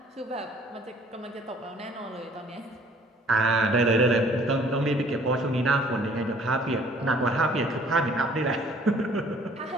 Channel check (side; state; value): both; normal; correlation 0.56